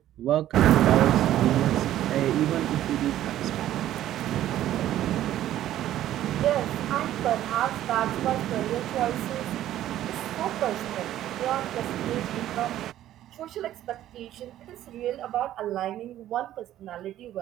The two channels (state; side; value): quieter; left; 12.8 dB